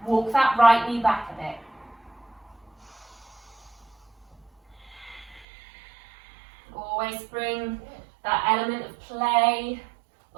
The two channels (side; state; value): left; drops out; at 5.5 s